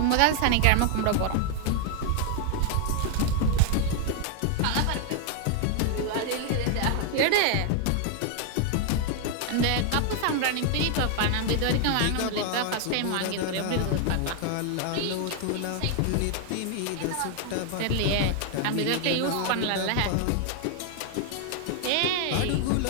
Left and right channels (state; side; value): different; both; correlation 0.00